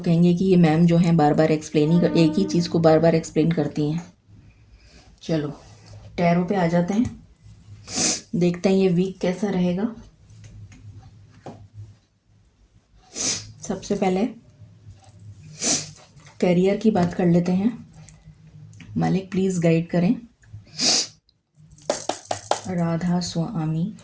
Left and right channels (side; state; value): both; identical; correlation 1.00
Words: कहेंगे कि ये मैम जो हैं बार बार एक्सप्लेन ही एक ही चीज़ को बार बार एक्सप्लेन करती हैं। चलो टैरो पे आ जाते हैं, देखते हैं ये वीक कैसा रहेगा। सबसे पहले करियर की बात कर लेते हैं। मालिक प्लीज़ गाइड करें। राधा स्वामी।